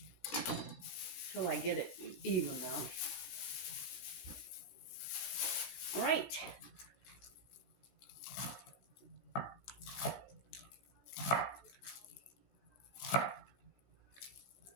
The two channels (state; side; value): late; right; 15 ms